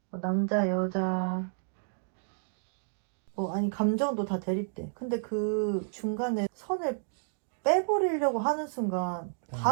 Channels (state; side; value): silent; left; digital silence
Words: 뭐 남자, 여자, 뭐 아니 감정도 다 대립돼. 근데 그 중간에 선을 빼버리려고 하는 순간